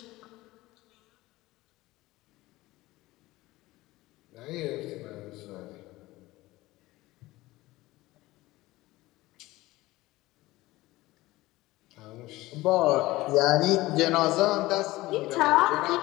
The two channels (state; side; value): quieter; right; 18.7 dB